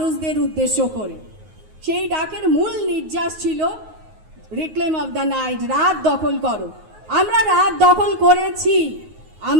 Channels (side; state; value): left; late; 9.5 ms